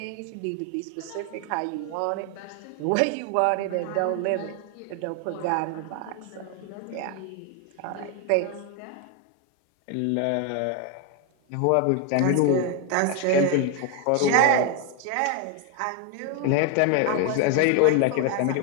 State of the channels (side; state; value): both; different; correlation 0.01